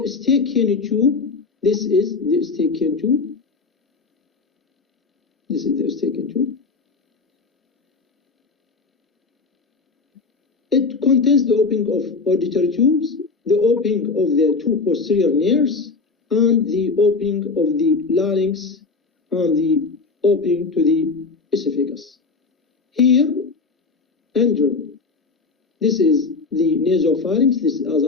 tube. This is the Eustachian tube. This is the Eustachian tube. It contains the opening of auditory tubes, the opening of the two posterior nares, and the opening of the larynx, and the opening to the esophagus. Here, under, this is the nasopharynx. This is, as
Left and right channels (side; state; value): right; quieter; 4.2 dB